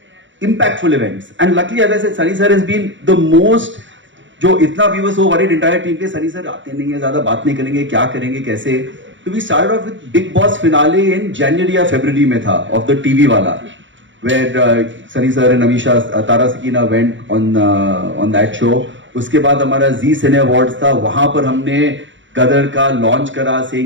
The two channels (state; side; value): late; left; 0.55 ms